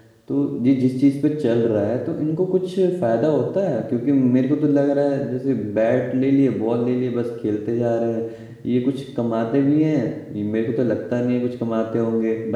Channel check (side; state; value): both; identical; correlation 1.00